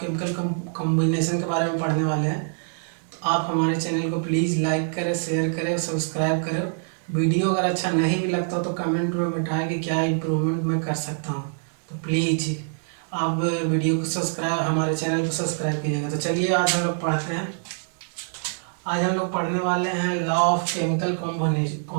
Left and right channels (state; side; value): silent; left; digital silence